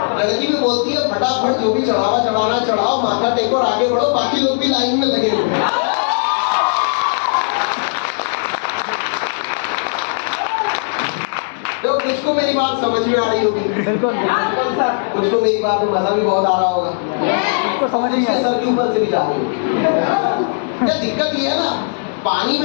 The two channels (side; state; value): right; silent; digital silence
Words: लड़की भी बोलती है फटाफट जो भी चढ़ावा चढ़ाना चढ़ाओ, माथा टेको और आगे बढ़ो, बाकी लोग भी लाइन में लगे हुए। कुछ मेरी बात समझ में आ रही होगी, बिल्कुल कुछ को मेरी बात में मजा भी बहुत आ रहा होगा, उसको समझ नहीं आया सर के ऊपर से भी जा रही होगी। क्या दिक्कत ये है ना, पानी